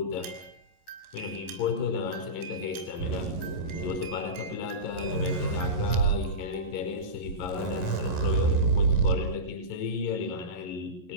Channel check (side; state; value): right; late; 11 ms